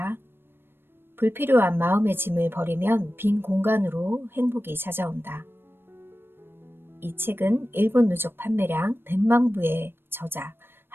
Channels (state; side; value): late; left; 0.10 ms